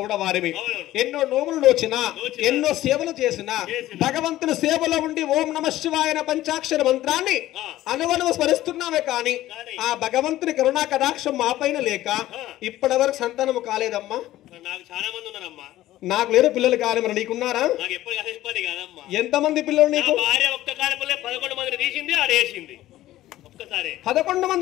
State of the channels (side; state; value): right; quieter; 14.9 dB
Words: వారివి. ఎన్నో నోములు నోచిన ఎన్నో సేవలు చేసిన భగవంతుని సేవలో ఉండి ఓం నమ శివాయ పంచాక్షర మంత్రాన్ని అనువనువు స్మరిస్తున్నామే కాని ఆ భగవంతుని కరుణా కటాక్షం మా పైన లేక ఇప్పటి వరకు సంతానము కాలేదమ్మా. నాకు చాలా మంది ఉన్నారమ్మా. నాకు లేరు పిల్లలు కాదు. మరి నీకున్నారా? నాకు ఎప్పుడు కలిసిపోయి కాదమ్మా. ఎంతమంది పిల్లలు నీకు? భార్య ఒక్క కాలంలో 11 మందిని తీసింది, ఆడేసింది ఒక్కసారి. 11